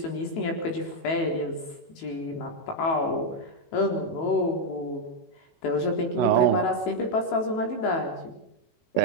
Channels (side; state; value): right; late; 18 ms